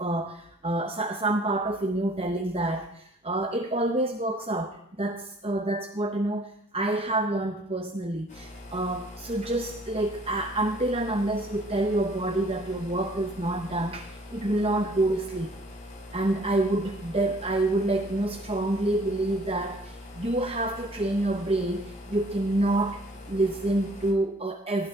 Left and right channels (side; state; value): both; normal; correlation 0.56